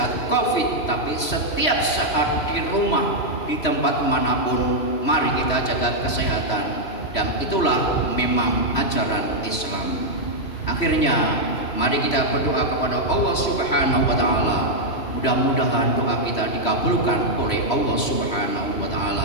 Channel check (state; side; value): late; right; 3.1 ms